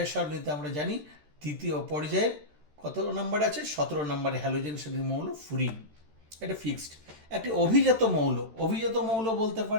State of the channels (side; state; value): left; late; 13 ms